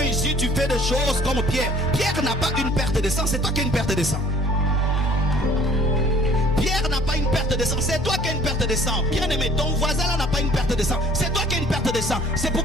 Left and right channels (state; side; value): normal; both; correlation 0.54